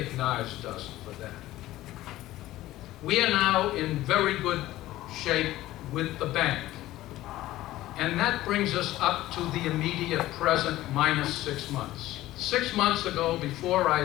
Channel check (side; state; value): right; quieter; 15.8 dB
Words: us for that. We are now in very good shape with the bank. And that brings us up to the immediate present minus 6 months. 6 months ago, before